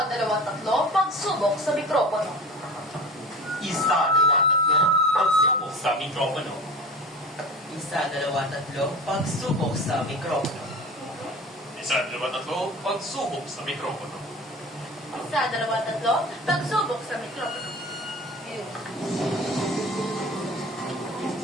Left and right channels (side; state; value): both; normal; correlation 0.36